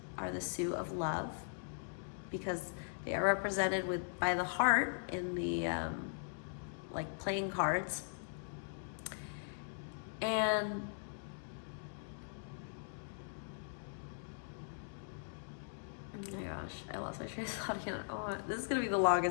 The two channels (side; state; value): right; silent; digital silence